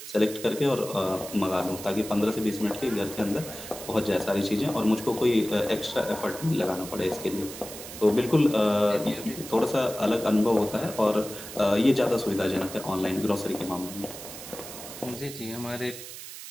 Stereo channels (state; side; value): noise; right; hiss, 12 dB below the sound